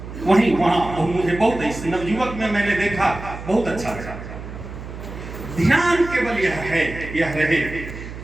वहां मुझे बहुत नवयुवक में मैंने देखा, बहुत अच्छा लगा। ध्यान केवल यह रहे,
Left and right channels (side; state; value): right; noise; hum, 11 dB below the sound